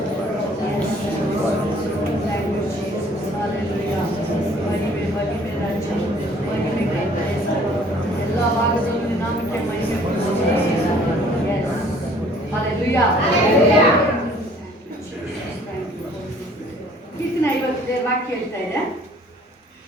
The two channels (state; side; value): normal; both; correlation 0.56